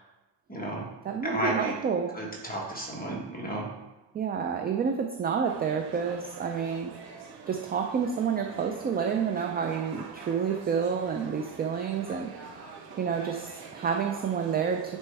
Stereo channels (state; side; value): quieter; left; 5.6 dB